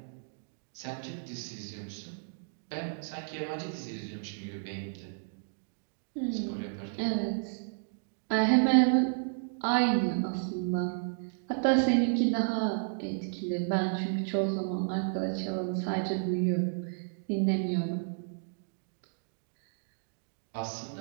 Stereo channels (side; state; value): left; silent; digital silence